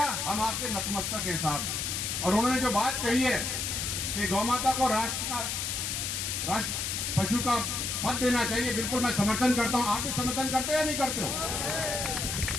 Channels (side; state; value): left; noise; hiss, 2 dB below the sound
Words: हम आपके नतमस्तक हैं साहब। और उन्होंने जो बात कही है कि गौ माता को राष्ट्र पशु का पद देना चाहिए, बिल्कुल मैं समर्थन करता हूं। आप भी समर्थन करते हो या नहीं करते हो?